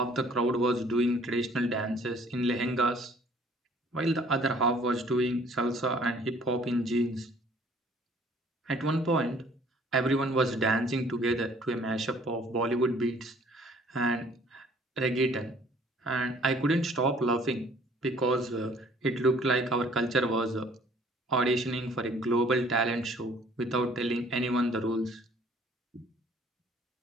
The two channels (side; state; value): both; normal; correlation 0.57